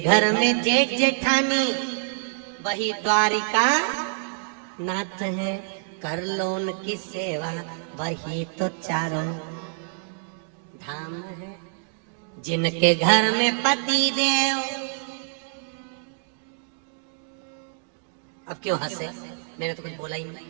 घर में जेठ जेठानी वही द्वारिका नाथ है। कर लो उनकी सेवा वही तो चारों धाम है। जिनके घर में पति देव, अब क्यों हंसे? मैंने तो कुछ बोला ही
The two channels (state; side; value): silent; left; digital silence